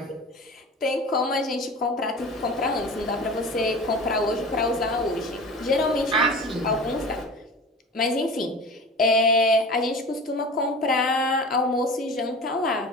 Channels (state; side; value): normal; both; correlation 0.36